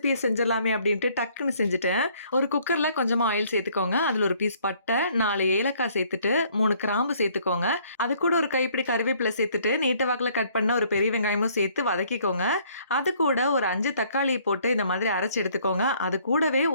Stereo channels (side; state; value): both; inverted; correlation -0.62